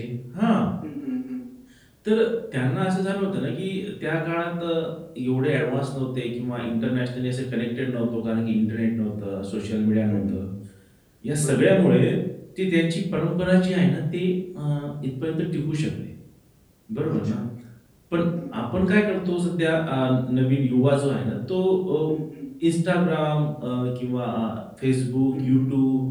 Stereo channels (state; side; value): identical; both; correlation 1.00